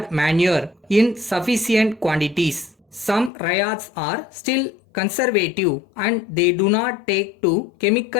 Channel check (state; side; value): drops out; right; at 3.3 s